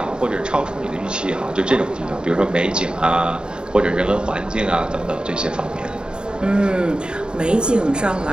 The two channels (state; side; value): late; left; 0.049 ms